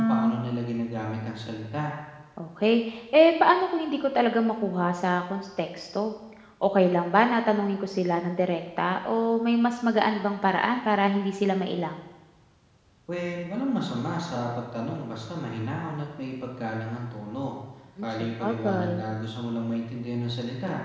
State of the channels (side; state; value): both; identical; correlation 1.00